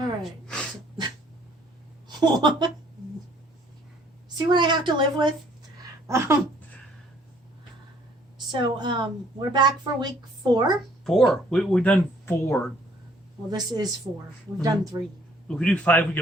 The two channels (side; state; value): both; normal; correlation 0.61